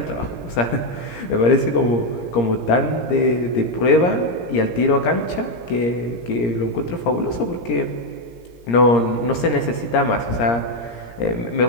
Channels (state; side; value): late; right; 17 ms